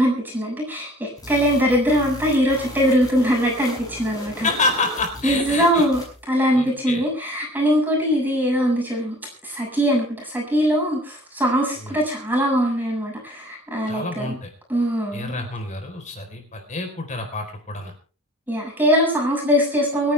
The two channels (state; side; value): normal; both; correlation 0.49